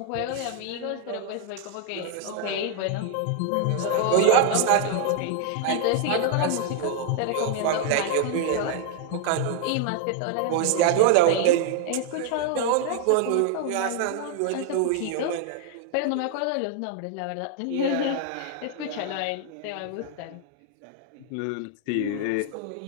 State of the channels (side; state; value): both; different; correlation 0.00